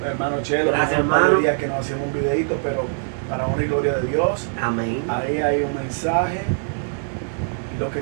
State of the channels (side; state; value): left; silent; digital silence